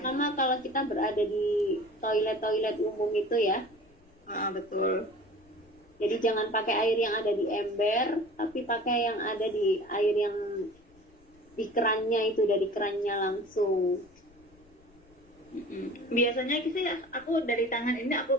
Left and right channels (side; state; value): left; noise; rumble, 29 dB below the sound